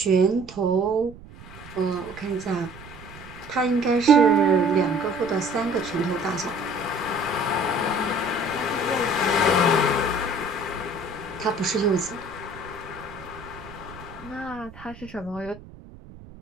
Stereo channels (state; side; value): noise; right; rumble, 18 dB below the sound